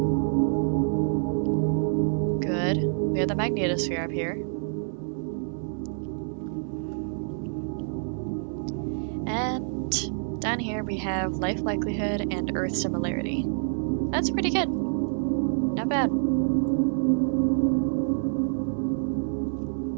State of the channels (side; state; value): left; silent; 60 dB below the other